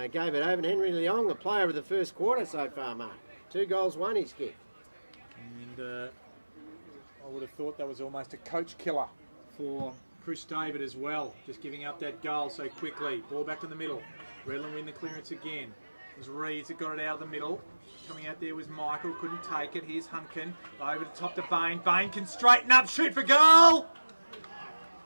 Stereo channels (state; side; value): inverted; both; correlation -1.00